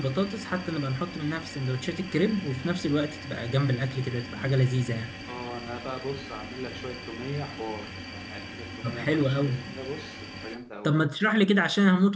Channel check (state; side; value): identical; both; correlation 1.00